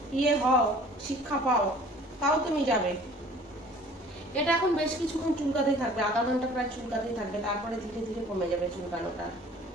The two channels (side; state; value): both; normal; correlation 0.50